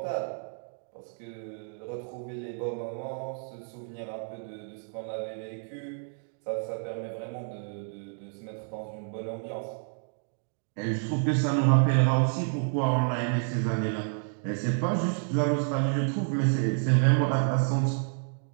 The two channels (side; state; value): left; silent; 58 dB below the other